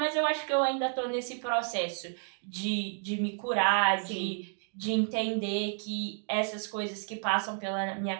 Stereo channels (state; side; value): silent; left; 55 dB below the other